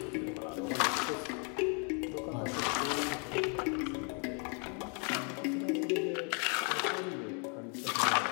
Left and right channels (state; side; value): quieter; right; 38.5 dB